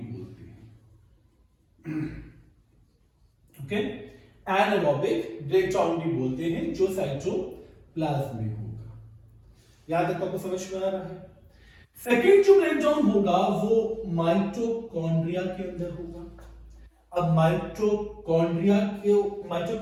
बोलते हैं। ओके, एनारोबिक ब्रेकडाउन भी बोलते हैं जो साइटोप्लाज्म में होगा। याद तक आपको समझ में आ रहा है? सेकेंड जो ब्रेकडाउन होगा वो माइटोकॉन्ड्रिया के अंदर होगा। अब माइटोकॉन्ड्रिया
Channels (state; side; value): identical; both; correlation 1.00